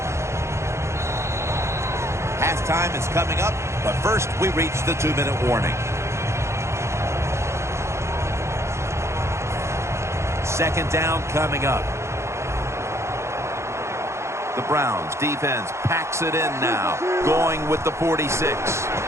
Halftime is coming up, but first we reach the 2-minute warning. Second down coming up. The Browns defense packs it in now, going with the 46.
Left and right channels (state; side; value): late; left; 0.13 ms